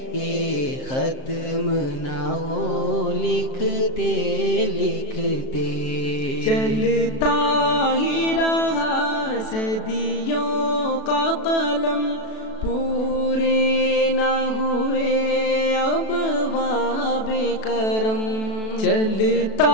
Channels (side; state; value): right; late; 37 ms